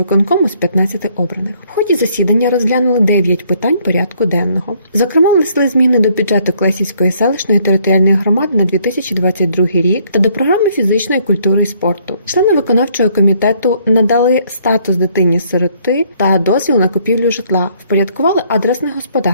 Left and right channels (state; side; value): inverted; both; correlation -0.65